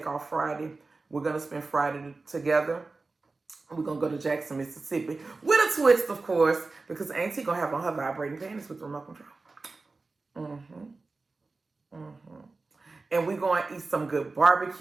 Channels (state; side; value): quieter; left; 3.7 dB